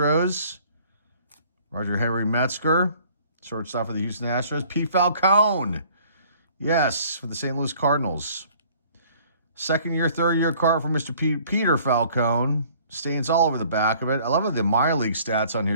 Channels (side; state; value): both; inverted; correlation -0.56